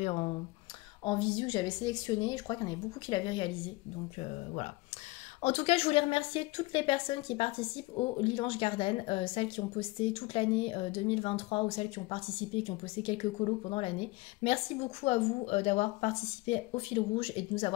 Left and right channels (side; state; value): right; quieter; 21.9 dB